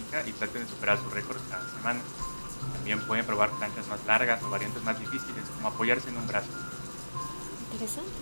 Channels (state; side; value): inverted; both; correlation -1.00